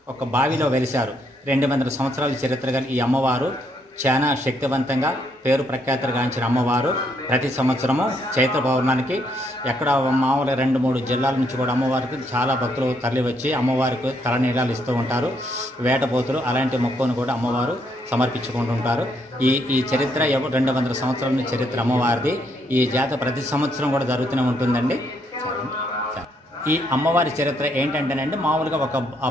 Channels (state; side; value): normal; both; correlation 0.73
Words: ఒక బావిలో వెలిశారు. 200 సంవత్సరాల చరిత్ర గల ఈ అమ్మవారు చాలా శక్తివంతంగా పేరు ప్రఖ్యాతులుగాంచిన అమ్మవారు ప్రతి సంవత్సరము చైత్ర పౌర్ణానికి ఎక్కడ మామూలు 2-3 జిల్లాల నుంచి కూడా అమ్మవారికి చాలా భక్తులు తరలి వచ్చి అమ్మవారికి తలనీలాలు ఇస్తూ ఉంటారు. వేటపోతులు అలాంటి మొక్కును కూడా అమ్మవారు సమర్పించుకుంటుంటారు. ఈ చరిత్ర 200 సంవత్సరాల చరిత్ర అమ్మవారిది. ఈ జాతర ప్రతి సంవత్సరం కూడా జరుగుతూనే ఉంటుందండి. ఈ అమ్మవారి చరిత్ర ఏంటంటేనండి, మామూలుగా